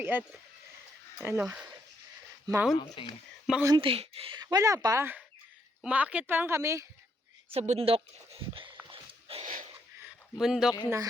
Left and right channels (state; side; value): normal; both; correlation 0.75